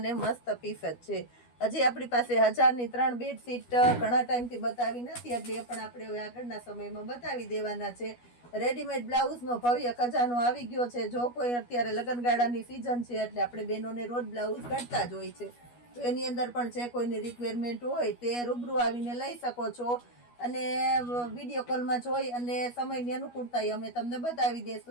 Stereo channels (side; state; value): right; late; 12 ms